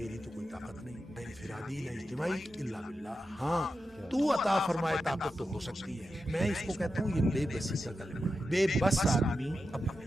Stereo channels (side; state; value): both; normal; correlation 0.90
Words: تو کوئی طاقت نہیں نہ انفرادی نہ اجتماعی الا باللہ. ہاں تو عطا فرمائے طاقت تو ہو سکتی ہے. میں اس کو کہتا ہوں یہ بے بسی کا کلمہ ہے. بے بس آدمی اب